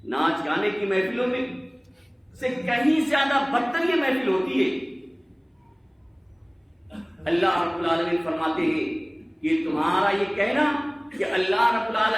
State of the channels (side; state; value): both; identical; correlation 1.00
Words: ناچ گانے کی محفلوں میں سے کہیں زیادہ بدتر یہ محفل ہوتی ہے. اللہ رب العالمین فرماتے ہیں کہ تمہارا یہ کہنا کہ اللہ رب